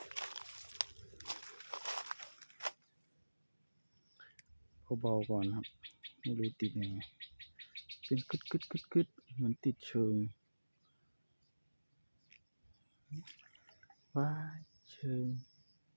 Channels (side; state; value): both; inverted; correlation -1.00